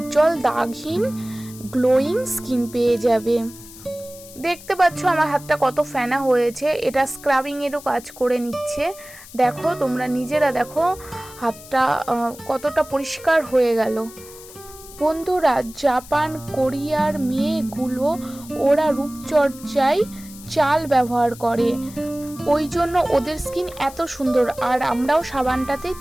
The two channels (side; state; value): left; noise; hiss, 18 dB below the sound